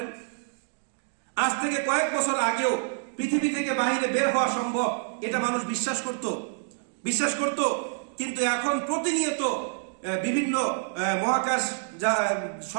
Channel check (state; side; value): silent; left; digital silence